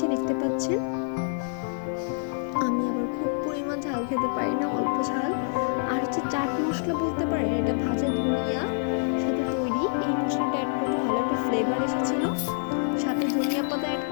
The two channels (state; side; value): silent; right; digital silence